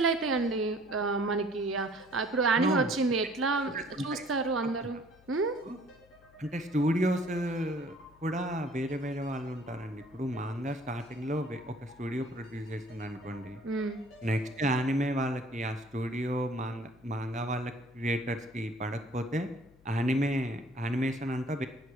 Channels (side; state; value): left; noise; hum, 28 dB below the sound